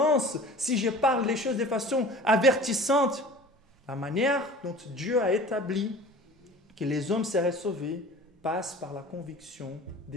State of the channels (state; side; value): normal; both; correlation 0.42